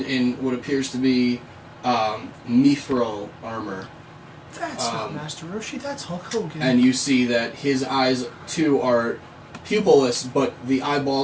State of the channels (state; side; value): identical; both; correlation 1.00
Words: in what appears to be mithril armor. That's not Master Roshi, that's Hulk Hogan. And you see that his eyes, too, are pupilless, but the